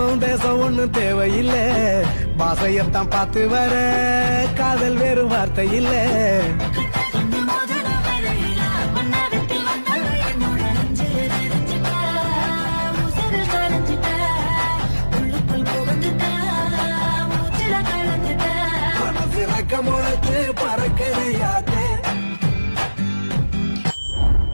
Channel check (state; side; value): inverted; both; correlation -1.00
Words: தேசம் ஒண்ணு தேவையில்லை, பாசையத்தான் பார்த்து வர காதல் வேறு வார்த்தை இல்லை. முளைச்சு பறக்கறையாதே